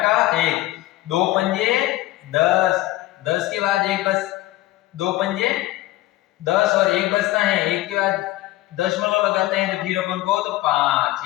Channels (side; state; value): right; quieter; 16.9 dB